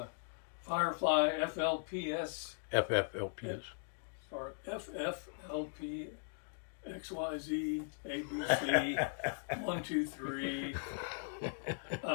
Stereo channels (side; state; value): right; silent; digital silence